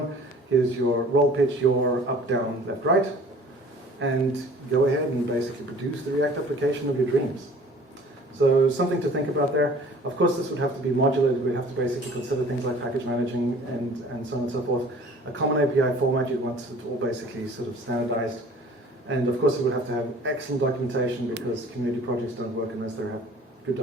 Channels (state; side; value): normal; both; correlation 0.49